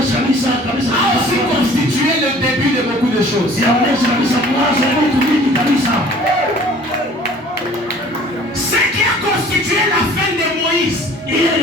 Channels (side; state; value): both; normal; correlation 0.50